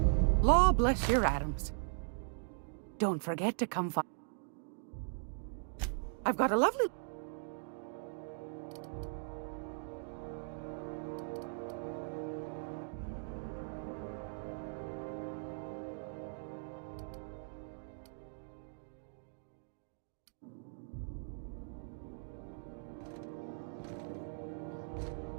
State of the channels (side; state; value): left; silent; digital silence